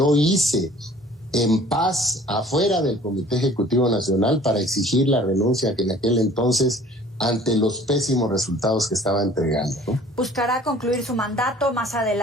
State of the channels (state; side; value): normal; both; correlation 0.51